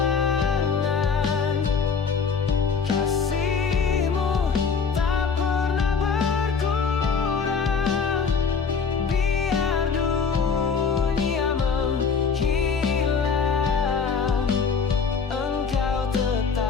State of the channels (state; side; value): quieter; right; 5.7 dB